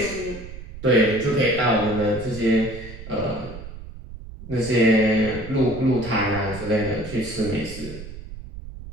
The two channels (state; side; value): noise; right; rumble, 13 dB below the sound